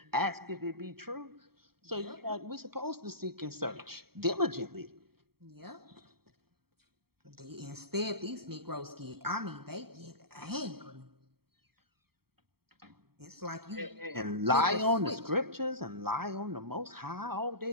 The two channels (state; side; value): late; left; 0.95 ms